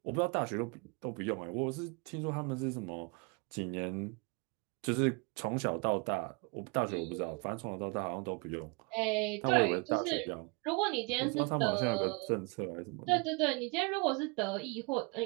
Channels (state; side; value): quieter; left; 30.1 dB